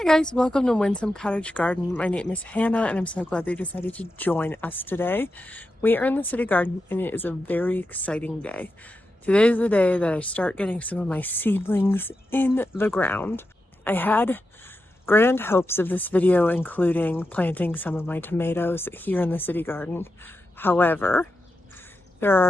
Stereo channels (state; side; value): normal; both; correlation 0.89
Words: Guys, welcome to Windsome Cottage Garden. My name is Hannah and I'm so glad they decided to join us today. We are in the city garden and it is a very exciting day. Today is the day that I start getting some of my seedlings in the ground. I had grand hopes of this video including planting some of my tomatoes here in the city garden. However, there